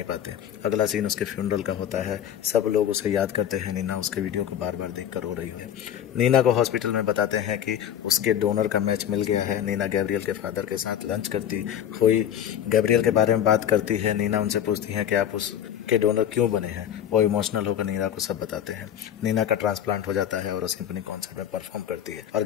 पाते। अगला सीन उसके फ्यूनरल का होता है। सब लोग उसे याद करते हैं। नीना उसके वीडियो को बार बार देखकर रो रही है। नीना को हॉस्पिटल में बताते हैं कि उसके डोनर का मैच मिल गया है। नीना गैब्रियल के फादर के साथ लंच करती हुई गैब्रियल के बारे में बात करती है। नीना उनसे पूछती है कि आप उसके डोनर क्यों बने हैं। वो इमोशनल होकर नीना को सब बताते हैं। नीना का ट्रांसप्लांट हो जाता है और उसे अपनी कॉन्सर्ट में परफॉर्म करती है और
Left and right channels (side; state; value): right; quieter; 9.8 dB